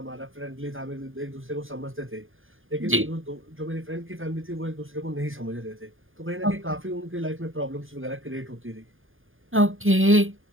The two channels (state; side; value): late; left; 0.59 ms